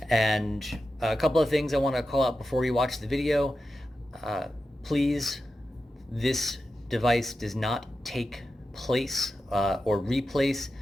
And a couple of things I want to call out before you watch the video. Please, this device does not take place or replace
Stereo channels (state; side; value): normal; both; correlation 0.91